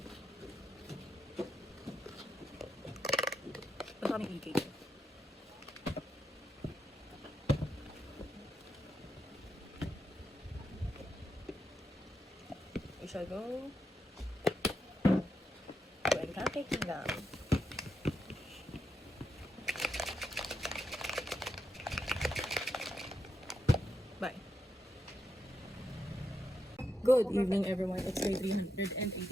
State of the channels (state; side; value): normal; both; correlation 0.84